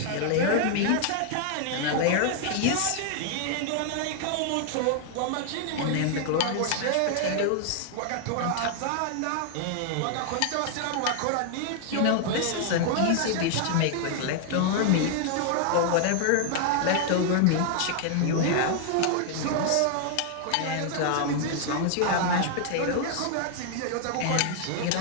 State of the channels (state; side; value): different; both; correlation 0.00